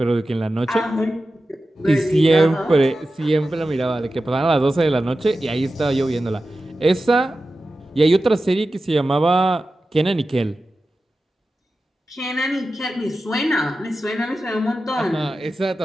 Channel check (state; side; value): normal; both; correlation 0.93